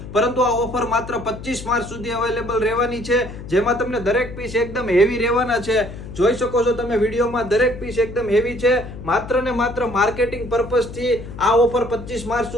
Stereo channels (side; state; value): left; noise; hum, 12 dB below the sound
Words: પરંતુ આ ઓફર માત્ર 25 માર્ચ સુધી અવેલેબલ રહેવાની છે, જેમાં તમને દરેક પીસ એકદમ હેવી રહેવાના છે. જોઈ શકો છો તમે વિડીયોમાં દરેક પીસ એકદમ હેવી છે. માત્ર ને માત્ર માર્કેટિંગ પર્પઝથી આ ઓફર 25 માર્ચ